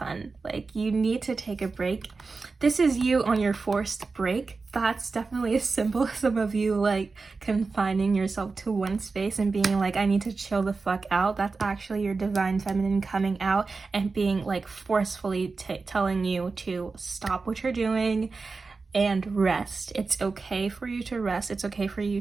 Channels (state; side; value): quieter; left; 4.2 dB